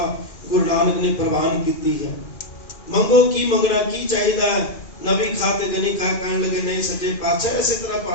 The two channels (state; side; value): late; right; 2.4 ms